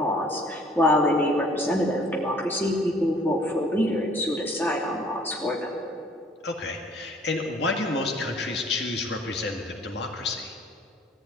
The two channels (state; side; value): normal; both; correlation 0.56